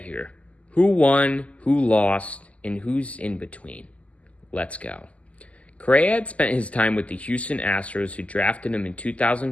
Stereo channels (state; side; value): late; right; 0.067 ms